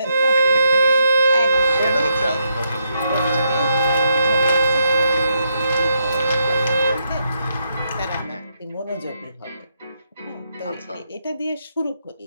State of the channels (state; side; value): inverted; both; correlation -0.80